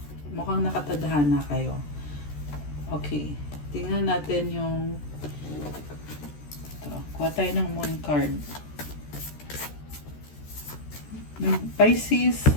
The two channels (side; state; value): right; late; 14 ms